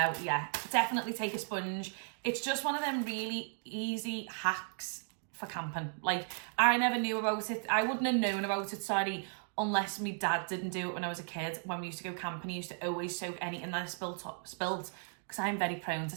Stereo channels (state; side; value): silent; left; 54 dB below the other